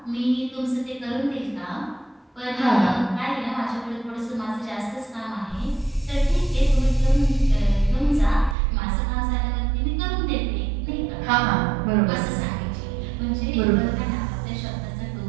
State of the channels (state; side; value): drops out; left; at 8.6 s